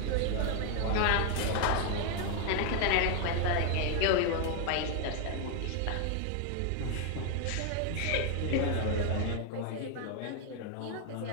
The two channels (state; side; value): different; both; correlation 0.01